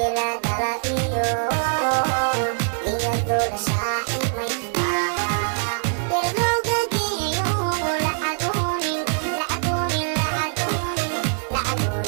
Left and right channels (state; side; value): silent; left; digital silence